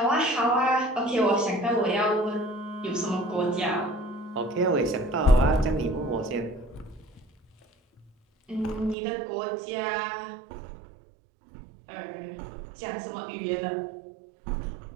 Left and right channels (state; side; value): drops out; left; at 9.0 s